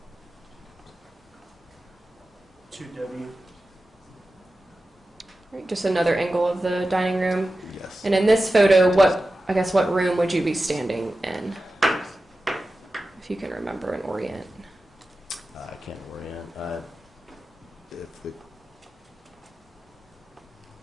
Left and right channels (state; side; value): normal; both; correlation 0.94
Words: 2W. All right, just another angle of the dining room. Yes. And in this photo, what room would you be standing in? If you can remember and orient. I can't orient. If the